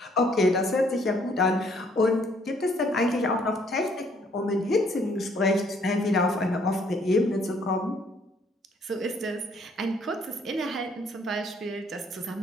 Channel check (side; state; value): both; normal; correlation 0.64